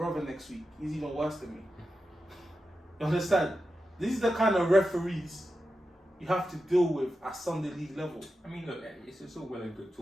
next week. He's even worse than me. You understand? This is the kind of referees you have to deal with at Sunday League level. I mean, look, it's all well and good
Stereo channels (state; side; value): normal; both; correlation 0.90